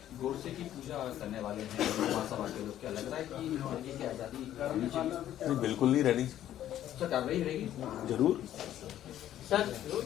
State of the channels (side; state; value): right; quieter; 11.9 dB